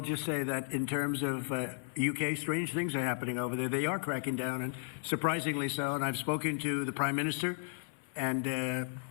say that in terms of UK, strange things are happening over there. They are cracking down, and surprisingly so. And I've spoken to the Prime Minister, and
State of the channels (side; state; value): right; silent; 55 dB below the other